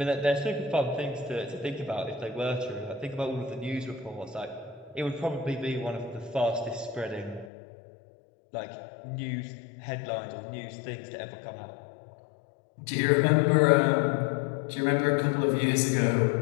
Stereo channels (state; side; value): drops out; right; at 7.5 s